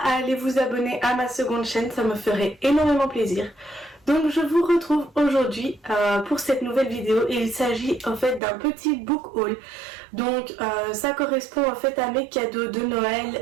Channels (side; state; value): left; drops out; at 8.4 s